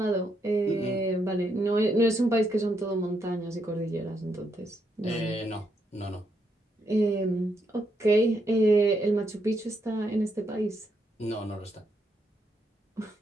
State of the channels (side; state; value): both; normal; correlation 0.78